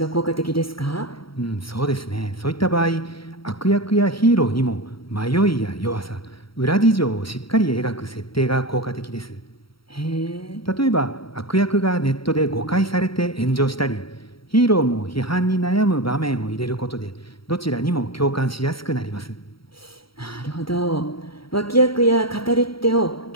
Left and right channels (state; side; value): late; right; 0.75 ms